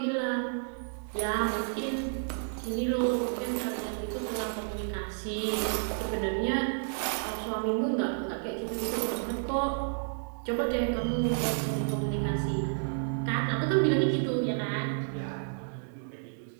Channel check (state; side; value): silent; left; 57 dB below the other